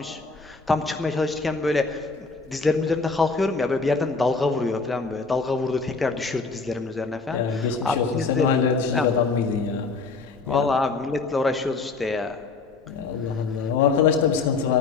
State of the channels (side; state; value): right; quieter; 4.2 dB